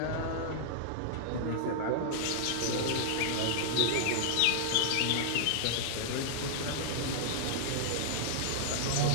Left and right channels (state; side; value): different; both; correlation -0.01